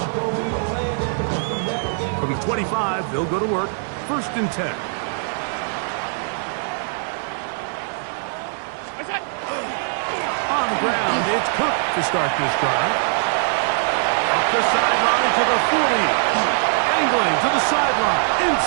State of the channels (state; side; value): silent; left; digital silence